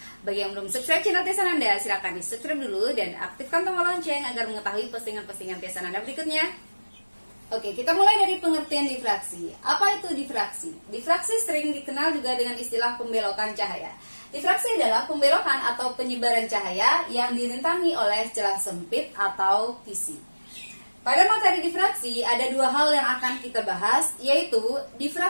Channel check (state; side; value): inverted; both; correlation -1.00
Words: Bagi yang belum subscribe channel Tia Sananda, silakan di subscribe dulu dan aktifkan tombol lonceng agar mengetahui postingan-postingan Tia Sananda berikutnya. Oke, kita mulai dari pengertian difraksi. Apa itu difraksi? Difraksi sering dikenal juga dengan istilah pembelokan cahaya. Difraksi adalah pembelokan atau penyebaran cahaya yang dirintangi oleh celah sempit atau kisi. Pada materi difraksi ada dua hal yang akan kita bahas, yaitu